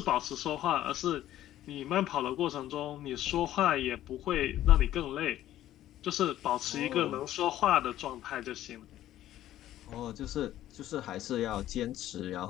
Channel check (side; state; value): right; quieter; 13.2 dB